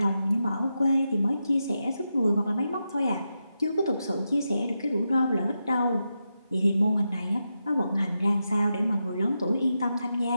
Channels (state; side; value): inverted; both; correlation -0.88